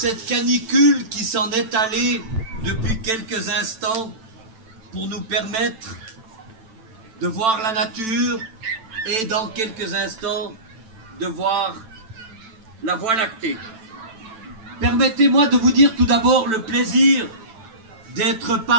canicule qui s'en est allée depuis quelques instants pour nous permettre de voir la nature et dans quelques instants de voir la Voie lactée. Permettez-moi de vous dire tout d'abord le plaisir d'être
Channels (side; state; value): left; late; 9.1 ms